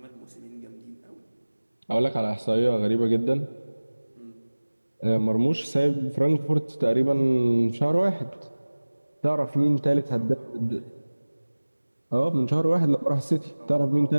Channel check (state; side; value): inverted; both; correlation -1.00